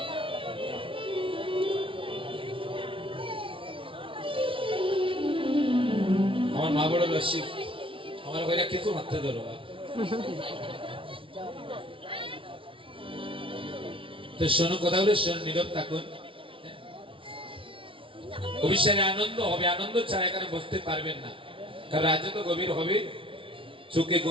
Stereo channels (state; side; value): late; left; 0.25 ms